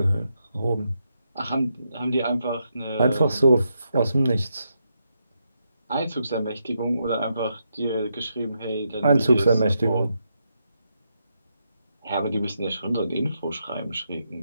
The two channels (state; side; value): inverted; both; correlation -0.82